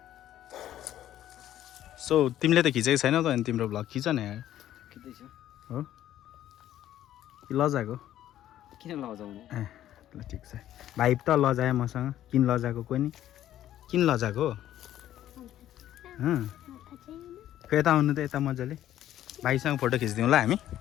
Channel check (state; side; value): quieter; right; 12.3 dB